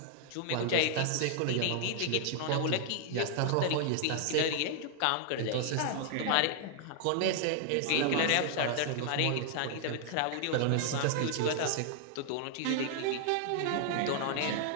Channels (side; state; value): both; different; correlation 0.00